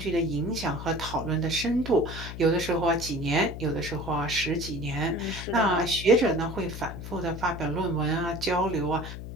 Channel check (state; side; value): noise; left; hum, 9 dB below the sound